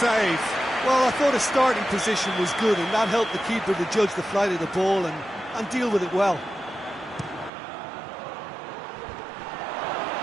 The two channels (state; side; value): drops out; left; at 7.5 s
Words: Well, I thought his starting position was good, and that helped the keeper to judge the flight of the ball and deal with it well.